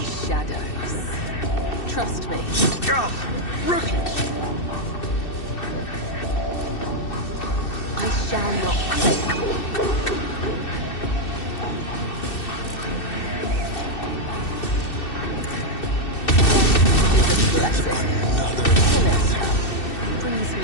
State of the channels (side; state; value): right; late; 2.6 ms